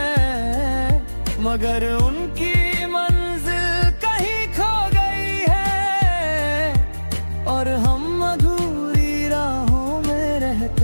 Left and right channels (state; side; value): inverted; both; correlation -1.00